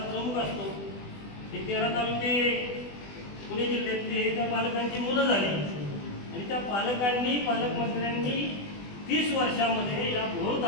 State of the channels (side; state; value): right; late; 20 ms